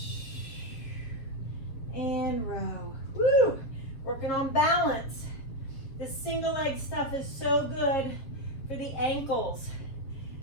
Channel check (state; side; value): late; right; 7.1 ms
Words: And row. Woo! Working on balance. This single leg stuff is so good for the ankles